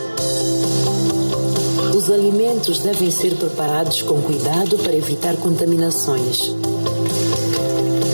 Os alimentos devem ser preparados com cuidado para evitar contaminações.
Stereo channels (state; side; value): inverted; both; correlation -1.00